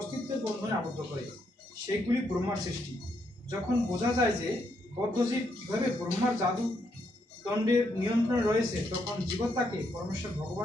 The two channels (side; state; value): both; normal; correlation 0.77